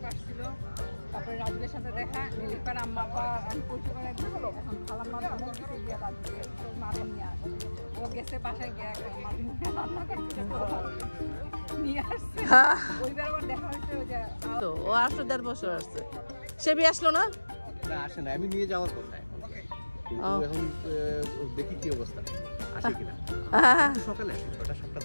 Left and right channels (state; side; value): inverted; both; correlation -1.00